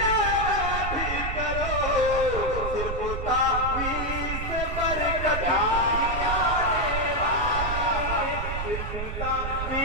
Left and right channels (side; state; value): right; noise; rumble, 5 dB below the sound